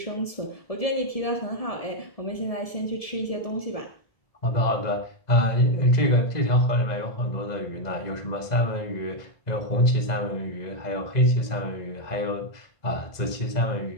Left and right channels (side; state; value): right; late; 2.0 ms